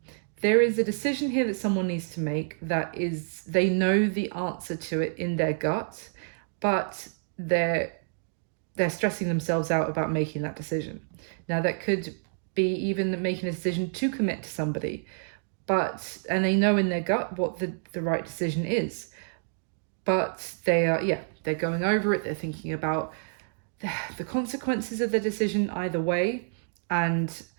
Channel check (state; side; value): silent; left; digital silence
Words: there is a decision here that someone needs to make that is, they know the answer to it in their gut, but they're stressing themselves out about making that decision. Now, that could be even making a decision to commit to somebody, and they know in their gut what the right decision is, but they're going over it. They're thinking about the consequences of the decision either way, and